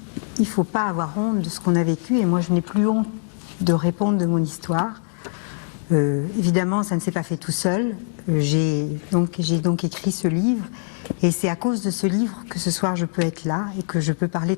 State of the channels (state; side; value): silent; right; digital silence